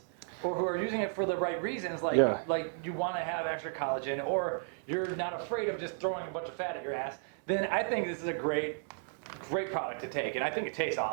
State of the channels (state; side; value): silent; left; 55 dB below the other